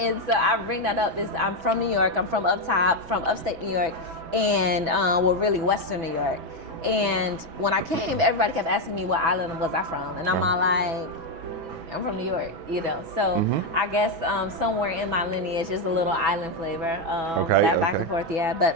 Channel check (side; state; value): left; late; 6.1 ms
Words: so I bring that up. I'm from New York. I'm from up top, from upstate New York, and really Western New York. And when I came, everybody kept asking me what island was I from, and I'm all like, I'm from New York, So I guess somewhere in my lineage is a little island flavor. Back and forth, yeah. But